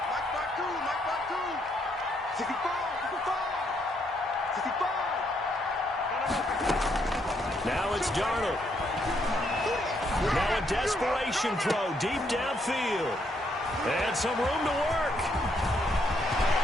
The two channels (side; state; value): both; normal; correlation 0.73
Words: two. 65. Now it's Darnold. Now a desperation throw deep downfield. And some room to work.